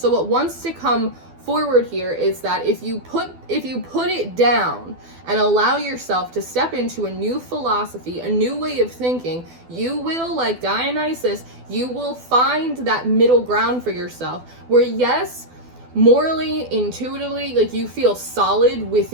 what wants to come forward here is that if you put it down and allow yourself to step into a new philosophy, a new way of thinking, you will, like Dionysus, you will find that middle ground for yourself where, yes, morally, intuitively, like you feel solid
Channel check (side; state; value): left; late; 12 ms